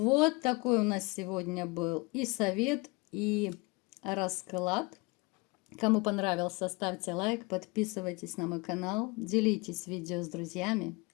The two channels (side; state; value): right; quieter; 26.9 dB